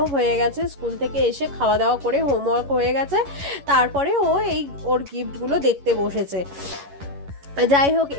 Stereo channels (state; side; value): late; left; 11 ms